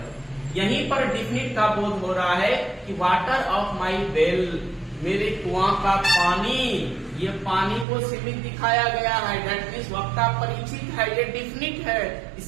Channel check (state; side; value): drops out; left; at 7.9 s